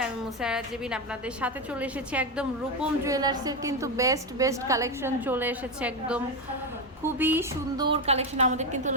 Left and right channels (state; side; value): normal; both; correlation 0.11